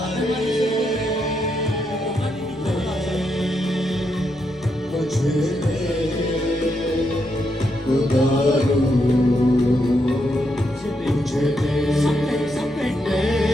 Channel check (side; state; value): left; noise; rumble, 29 dB below the sound